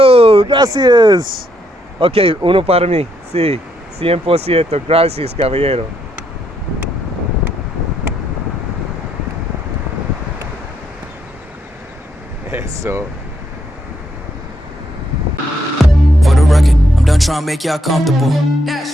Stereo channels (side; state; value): both; normal; correlation 0.76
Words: gracias. Ok, uno para mí, sí, 100%, gracias, caballero. Eso. For the record, I'm done trying to make y'all comfortable.